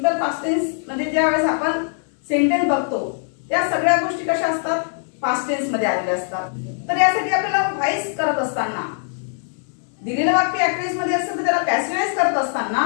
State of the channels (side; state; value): right; silent; digital silence